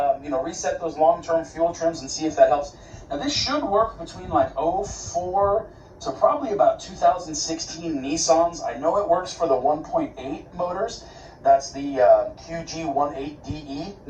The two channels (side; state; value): both; identical; correlation 1.00